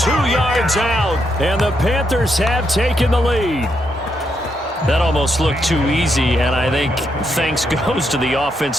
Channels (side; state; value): both; normal; correlation 0.79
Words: yards out. And the Panthers have taken the lead. That almost looked too easy, and I think thanks goes to the